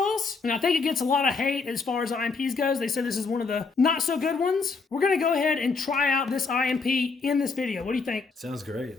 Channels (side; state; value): right; quieter; 4.5 dB